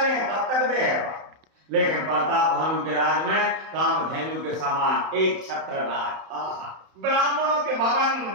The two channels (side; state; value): left; late; 31 ms